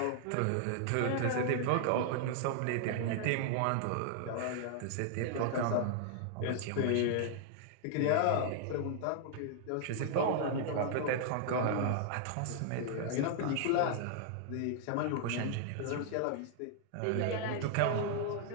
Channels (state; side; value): different; both; correlation -0.01